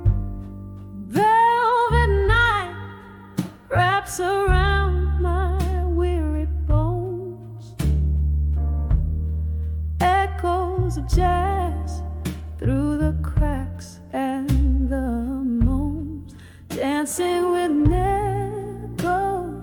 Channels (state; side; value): identical; both; correlation 1.00